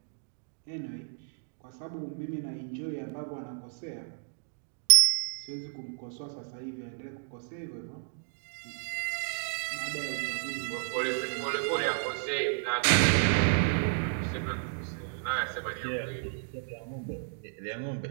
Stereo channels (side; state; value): left; silent; digital silence